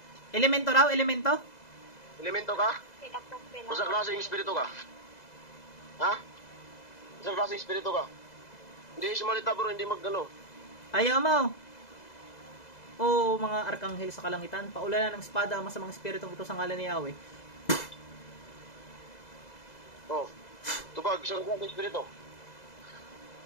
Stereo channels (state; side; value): late; right; 2.0 ms